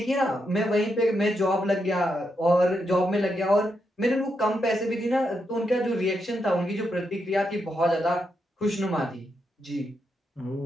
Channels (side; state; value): both; normal; correlation 0.82